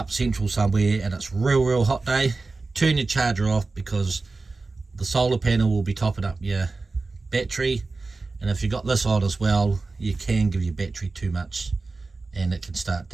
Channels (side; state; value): left; quieter; 3.7 dB